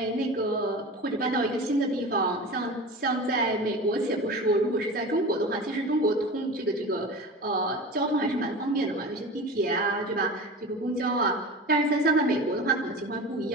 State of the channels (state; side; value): normal; both; correlation 0.32